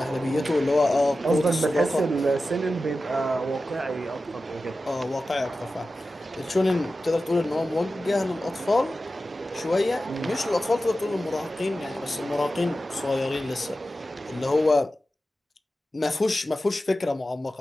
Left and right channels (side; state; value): both; normal; correlation 0.93